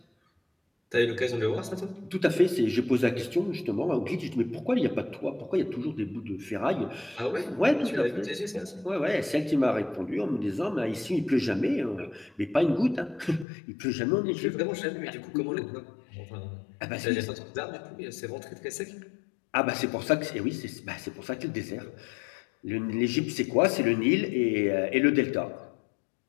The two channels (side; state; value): right; drops out; at 13.5 s